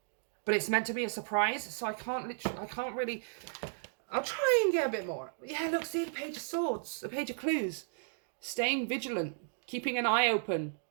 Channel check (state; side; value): silent; left; digital silence